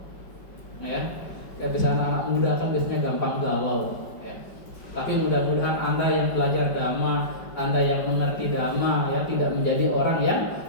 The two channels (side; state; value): right; late; 5.2 ms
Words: Ya. Ya biasanya anak muda kan biasanya gampang galau, ya. Tapi mudah-mudahan Anda yang belajar dhamma, Anda yang mengerti dhamma, ya, tidak menjadi orang yang